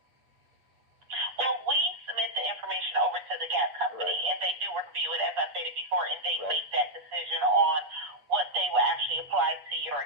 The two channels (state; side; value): late; left; 8.2 ms